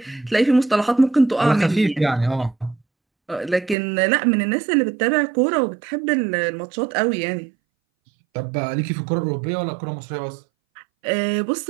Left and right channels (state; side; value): drops out; left; at 3.8 s